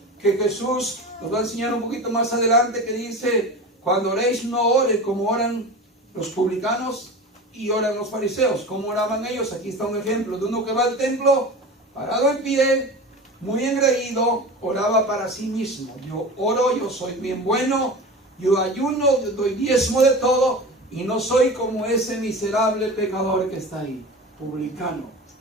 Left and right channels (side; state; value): both; normal; correlation 0.32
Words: que Jesús nos va a enseñar un poquito más adelante, que dice, cuando oréis no oren como oran los publicanos y oran los fariseos. ¿Cómo oraban ellos? Aquí está un ejemplo de uno que va al templo, parado en pie, muy engreído, oraba para sí mismo. Yo oro, yo soy bien bueno, yo ayuno, yo doy diezmo de todo, y no soy como ese miserable pecador que está ahí, publicano,